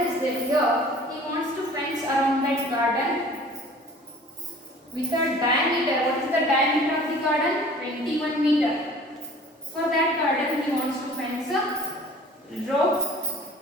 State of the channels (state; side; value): normal; both; correlation 0.47